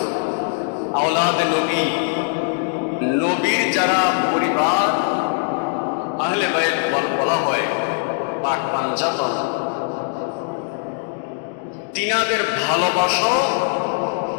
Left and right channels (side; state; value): right; silent; 60 dB below the other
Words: আওলাদে নবী, নবীর যারা পরিবার আহলে বাইত বলা হয়, পাক পাঞ্জাতন, তিনাদের ভালোবাসাও